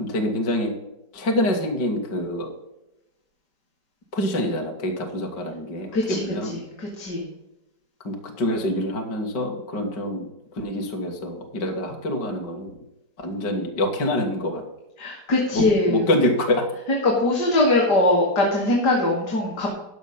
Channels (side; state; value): right; late; 5.1 ms